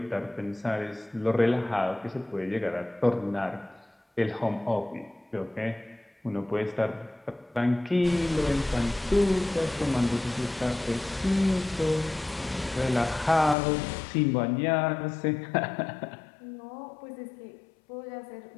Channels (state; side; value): drops out; right; at 13.6 s